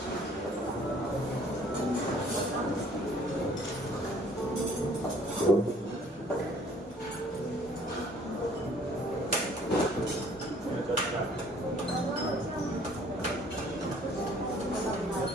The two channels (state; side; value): normal; both; correlation 0.57